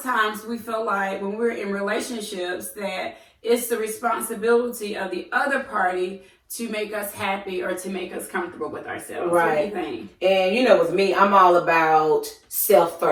times we feel like when we're in relationships that it's the responsibility of the other party to make us happy or to make us comfortable with ourselves. Right. What do you think? And with me, I'm all about self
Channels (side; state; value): both; identical; correlation 1.00